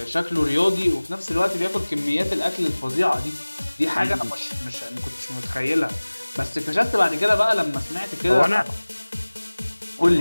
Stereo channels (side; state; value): both; inverted; correlation -1.00